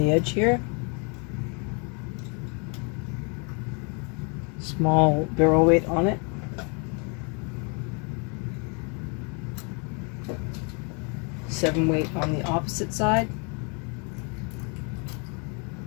edge here. Small barrel weight on it. Seven weight on the opposite side.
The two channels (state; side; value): quieter; right; 35.3 dB